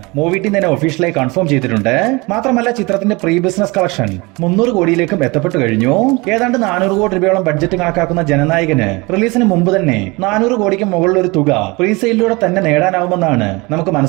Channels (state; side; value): quieter; left; 25.1 dB